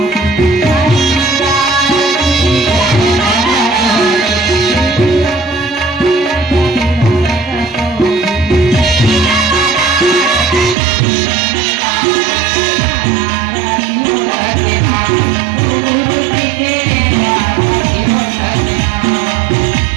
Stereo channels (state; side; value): drops out; left; at 10.8 s